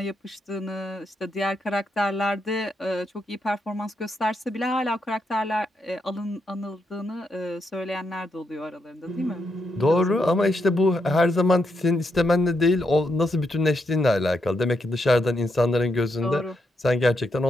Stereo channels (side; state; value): both; normal; correlation 0.81